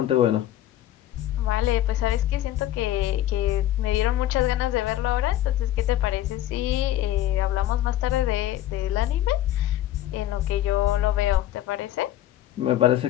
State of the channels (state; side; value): quieter; right; 13.1 dB